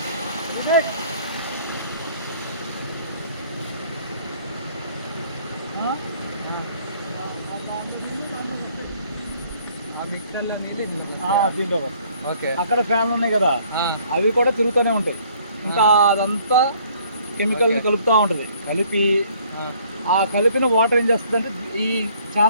మిక్సర్లో దీంట్లో ఓకే. అక్కడ ఫ్యాన్లు ఉన్నాయి కదా, అవి కూడా తిరుగుతూనే ఉంటాయి. ఇంకా అదంతా కెమికల్ని కలుపుతూ ఉంటుంది. కలిపి ఆ కలిపిన వాటర్ ఏం చేస్తుంది అంటే ఈ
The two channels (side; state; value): both; inverted; correlation -0.59